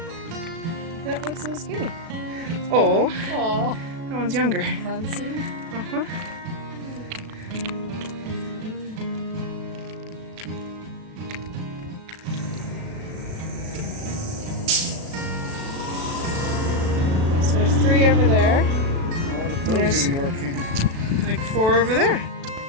That looks a little skinny. Oh. Aw. That one's younger. Fancy. Uh-huh. So there's 3 over there. There's like 4 over there.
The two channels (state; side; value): late; left; 37 ms